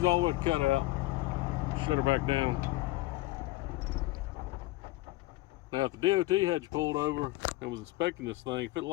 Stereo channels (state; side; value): quieter; right; 18.7 dB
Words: all the way to cut out. Shut her back down. Now, if the DOT had you pulled over and was inspecting this thing, if it